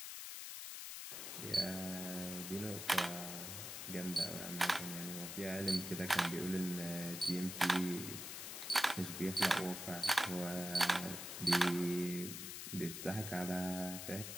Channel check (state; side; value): noise; left; hiss, 7 dB below the sound